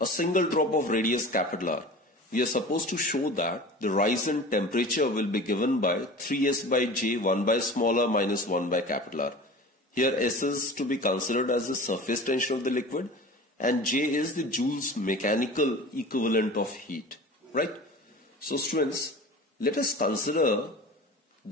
single drop of radius capital R, we are supposed to show that the rise in temperature will be given by 3s by j, 1 by smaller minus 1 by capital R. Here S is to be considered as the surface tension of the liquid and J is the Joule's mechanical equivalent of heat, right? So students, let us consider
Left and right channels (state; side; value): normal; both; correlation 0.38